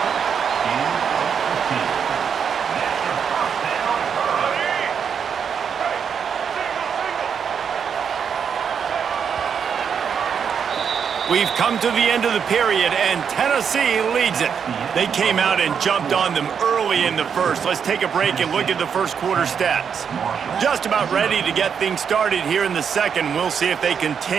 We've come to the end of the period, and Tennessee leads it. They came out and jumped on them early in the first. Let's take a break and look at the first quarter stats. Just about ready to get things started here in the second. We'll see if they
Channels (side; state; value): left; quieter; 7.1 dB